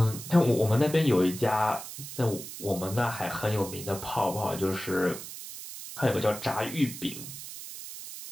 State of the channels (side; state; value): right; noise; hiss, 11 dB below the sound